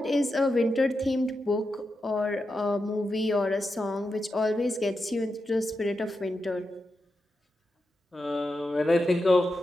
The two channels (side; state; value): both; normal; correlation 0.88